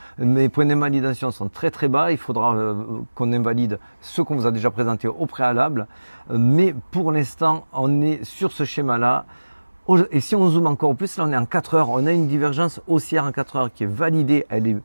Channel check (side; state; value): both; inverted; correlation -1.00